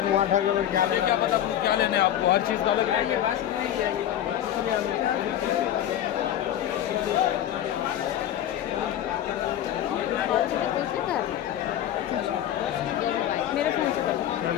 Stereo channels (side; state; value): right; quieter; 11.3 dB